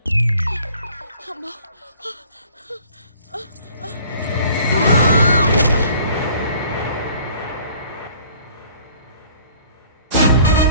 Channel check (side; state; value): both; inverted; correlation -0.53